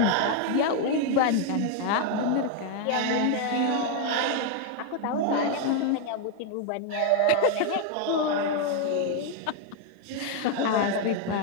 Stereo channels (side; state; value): both; different; correlation 0.00